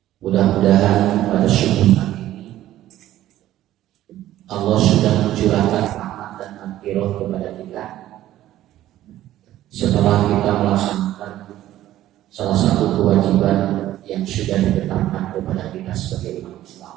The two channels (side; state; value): left; quieter; 13.7 dB